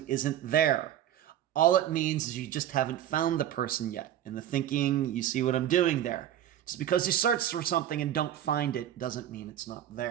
isn't there. All it means is you just haven't found the person yet. And the thinking, you see what I'm doing there. Just because you search for something and don't find it doesn't mean it's not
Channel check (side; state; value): left; quieter; 11.5 dB